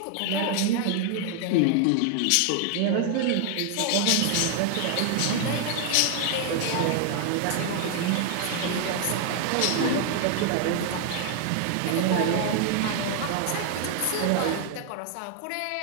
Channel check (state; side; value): different; both; correlation 0.00